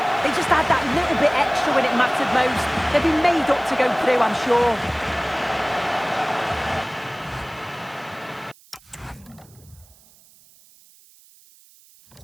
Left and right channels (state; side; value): noise; right; hiss, 27 dB below the sound